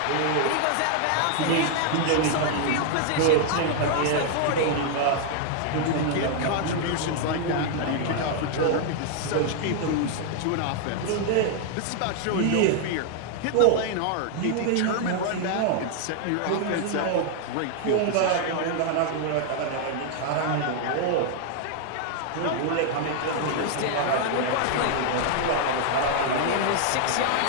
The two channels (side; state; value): both; different; correlation 0.00